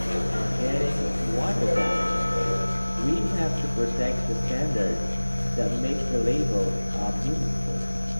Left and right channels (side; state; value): both; inverted; correlation -1.00